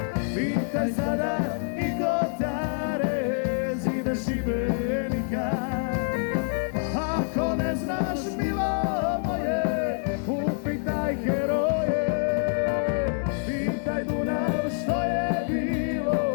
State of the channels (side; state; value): right; silent; 61 dB below the other